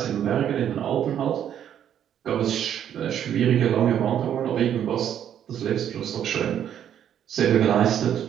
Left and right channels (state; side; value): quieter; left; 9.8 dB